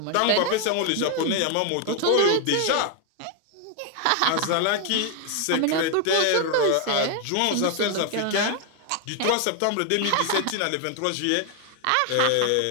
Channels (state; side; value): different; both; correlation 0.01